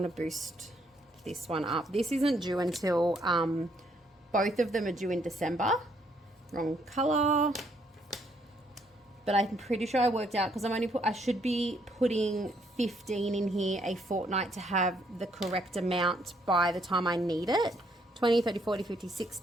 to boost this one up. This isn't due until both of them are due in December. Wrong color. But I'm pretty sure I worked out because I should be putting 15 in here a fortnight to have the correct amount by the time I need it. 20, 30, 40, 50,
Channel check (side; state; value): both; normal; correlation 0.70